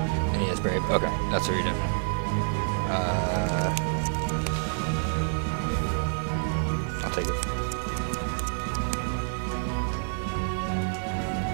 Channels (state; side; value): silent; left; digital silence